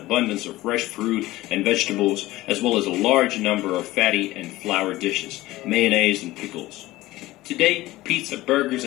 of fresh fruit and vegetables, as well as a large number of fatty and flour dishes, mayonnaise and pickles. Today, pizza, burgers,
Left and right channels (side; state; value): right; quieter; 17.6 dB